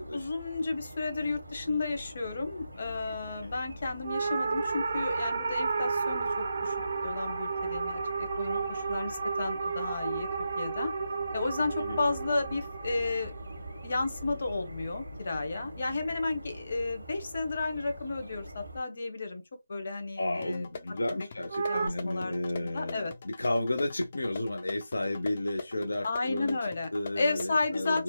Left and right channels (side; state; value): both; inverted; correlation -0.88